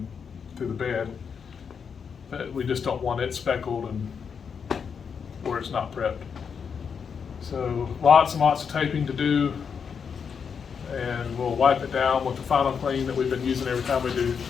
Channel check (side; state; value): right; quieter; 6.5 dB